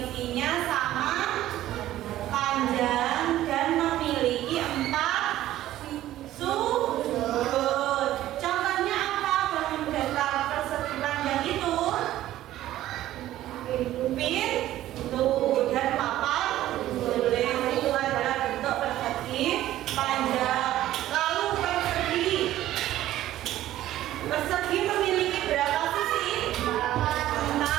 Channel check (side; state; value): left; quieter; 14.0 dB